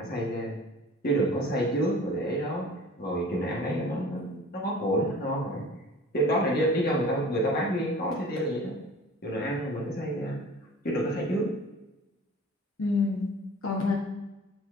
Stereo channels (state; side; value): normal; both; correlation 0.44